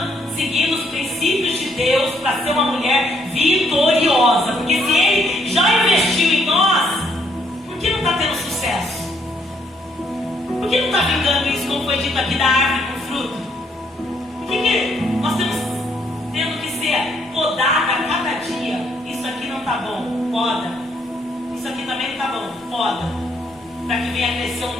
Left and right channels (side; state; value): both; normal; correlation 0.71